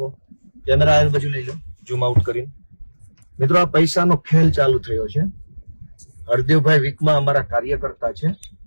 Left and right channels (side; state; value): both; inverted; correlation -1.00